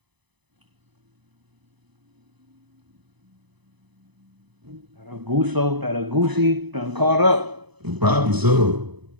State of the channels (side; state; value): left; late; 1.0 ms